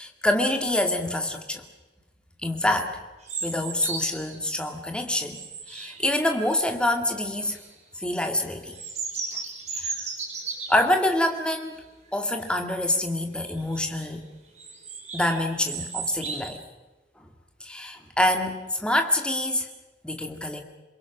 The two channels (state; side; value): normal; both; correlation 0.39